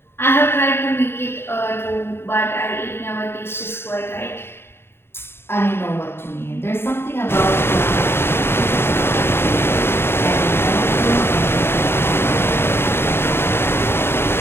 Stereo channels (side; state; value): right; late; 0.11 ms